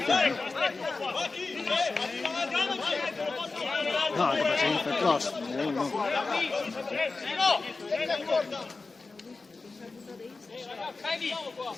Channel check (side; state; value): right; quieter; 3.8 dB